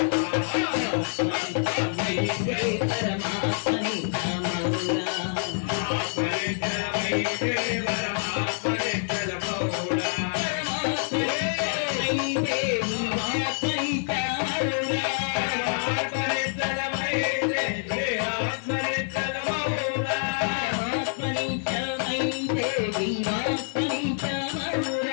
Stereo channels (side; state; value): right; silent; 60 dB below the other